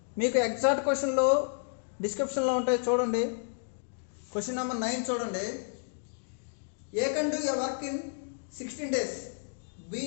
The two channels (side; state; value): right; silent; digital silence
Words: మీకు ఎగ్జాక్ట్ క్వశ్చన్లు డిస్క్రిప్షన్లో ఉంటాయి, చూడండి. క్వశ్చన్ నెంబర్ 9 చూడండి. A can do a work in 16 days, B